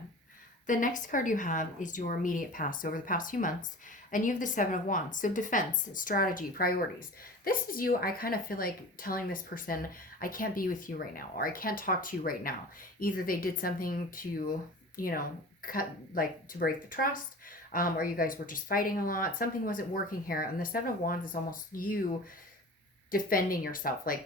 The next card you have is your immediate past, so over the past few months, and you have the Seven of Wands. So defense, strategy, priorities. This is you. I kind of feel like telling this person, I can't be with you right now, or I can't talk to you right now. Either they did something to, to break the trust, or you guys were just fighting a lot. Something wasn't working here. And the Seven of Wands is almost you defending yourself.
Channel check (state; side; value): normal; both; correlation 0.38